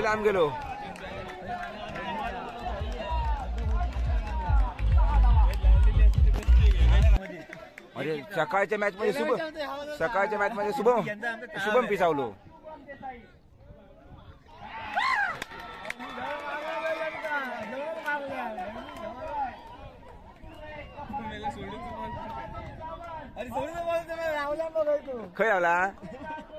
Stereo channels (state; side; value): identical; both; correlation 1.00